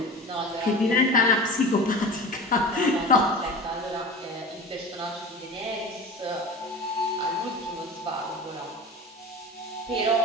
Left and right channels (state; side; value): normal; both; correlation 0.34